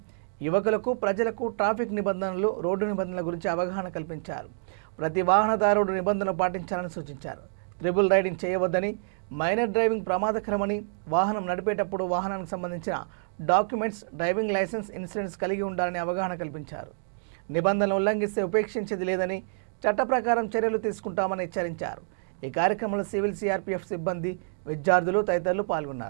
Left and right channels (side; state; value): left; silent; digital silence